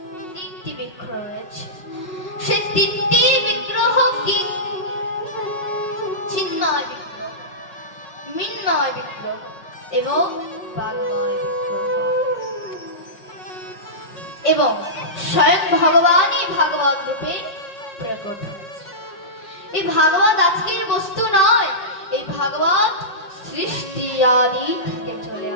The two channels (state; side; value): late; right; 5.2 ms